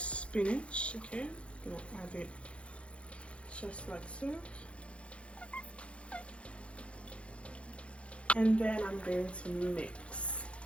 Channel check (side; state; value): right; late; 0.060 ms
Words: Okay, I'm gonna add it just like so. And then I'm going to mix.